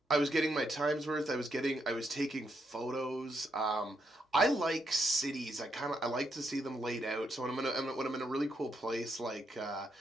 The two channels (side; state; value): both; normal; correlation 0.79